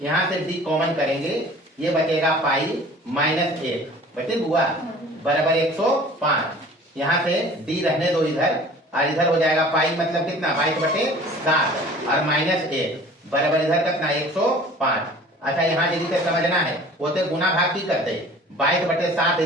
यहाँ से डी कॉमन करेंगे, ये बचेगा पाई माइनस 1 बचे हुआ बराबर 105, यहाँ से डी रहने दो इधर, और इधर हो जाएगा पाई मतलब कितना 22/7 और -1 बराबर इधर कितना 105। अच्छा यहाँ यदि से समझना है वो तो गुना भाग की करते 22/7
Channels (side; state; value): both; normal; correlation 0.46